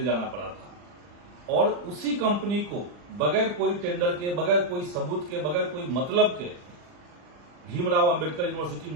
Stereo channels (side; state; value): left; late; 40 ms